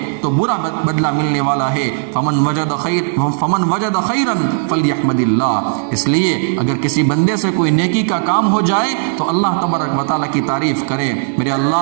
تو برا بدلہ ملنے والا ہے۔ فمن وجد خیرا فلیحمد اللہ۔ اس لیے اگر کسی بندے سے کوئی نیکی کا کام ہو جائے تو اللہ تبارک و تعالیٰ کی تعریف کرے، میرے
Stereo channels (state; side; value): silent; left; digital silence